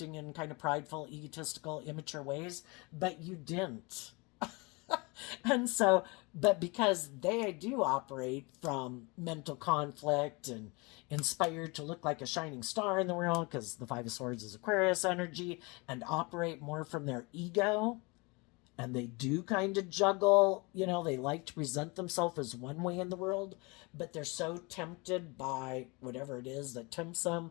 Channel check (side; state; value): right; quieter; 27.6 dB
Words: in kind of prideful, egotistical, immature ways, but you didn't. And so, but because they do operate from mental conflict and inspired to look like a shining star in the world, because the Five of Swords is Aquarius energy, and operate more from their ego, and they do kind of juggle, they like to present themselves as one way in the world, but they're so tempted by whatever it is that tempts them.